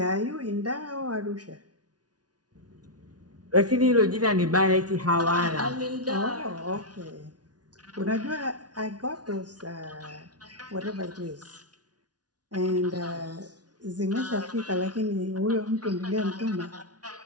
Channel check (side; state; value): left; late; 0.69 ms